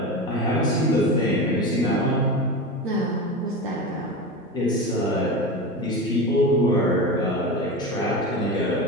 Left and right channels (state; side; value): normal; both; correlation 0.25